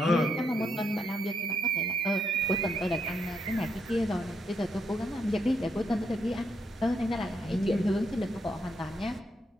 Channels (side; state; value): both; normal; correlation 0.78